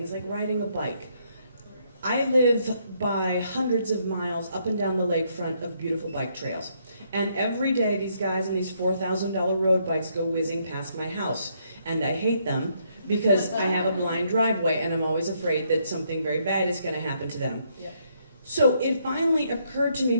like riding a bike. I live by hundreds of miles up and down the lakefront of beautiful bike trails. And every day these guys on these $4,000 road bikes go whizzing past my house. And I hate them because I have a blind driveway and I'm always afraid that something very bad is going to happen to them. Yeah. So it finally occurred to me,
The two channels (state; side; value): inverted; both; correlation -0.73